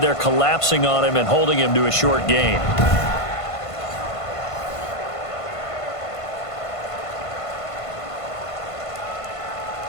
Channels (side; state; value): right; late; 1.5 ms